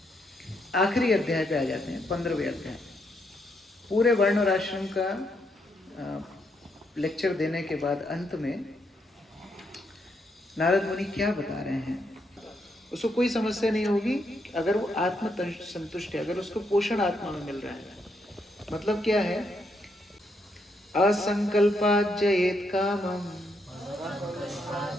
आखिरी अध्याय पे आ जाते हैं, 15वें अध्याय। पूरे वर्ण और आश्रम का लेक्चर देने के बाद अंत में नारद मुनि क्या बता रहे हैं, उसको कोई समस्या नहीं होगी अगर वो आत्म संतुष्ट है, अगर उसको पोषण आत्मा में मिल रहा है। मतलब क्या है? असंकल्पात् जयेत् कामम्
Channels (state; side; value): normal; both; correlation 0.77